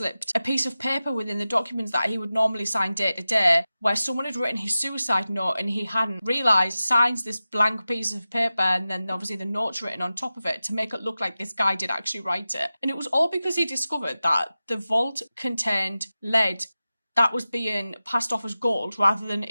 a piece of paper within the documents that he would normally sign day to day where someone had written his suicide note and he hadn't realised, signs this blank piece of paper and then obviously the note's written on top of it to make it look like this guy did actually write it. And it was all because he discovered that the vault contained lead that was being passed off as gold rather than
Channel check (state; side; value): inverted; both; correlation -0.95